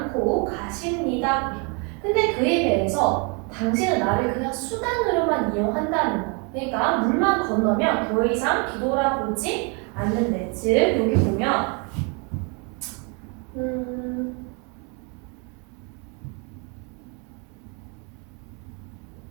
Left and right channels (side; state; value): left; quieter; 34.3 dB